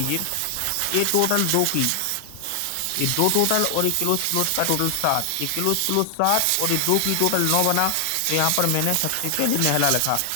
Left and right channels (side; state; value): both; different; correlation 0.00